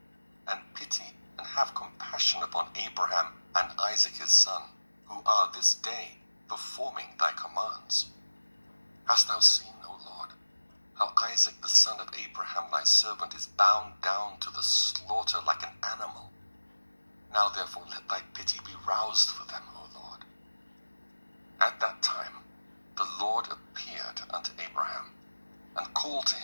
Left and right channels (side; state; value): both; inverted; correlation -1.00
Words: and pity and have compassion upon Abraham and Isaac his son, who are this day performing thy commands. Hast thou seen, O Lord, how Isaac the son of Abraham thy servant is bound down to the slaughter like an animal? Now therefore let thy pity be roused for them, O Lord. At that time the Lord appeared unto Abraham, and called to